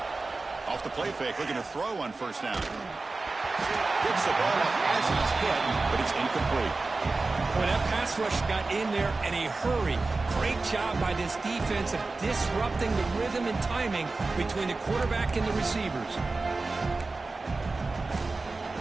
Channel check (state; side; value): quieter; left; 3.6 dB